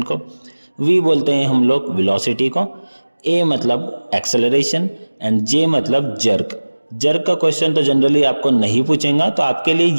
को, वी बोलते हैं हम लोग वेलोसिटी को, ए मतलब एक्सेलरेशन एंड जे मतलब जर्क। जर्क का क्वेश्चन तो जनरली आपको नहीं पूछेगा, तो आपके लिए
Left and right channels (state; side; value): inverted; both; correlation -1.00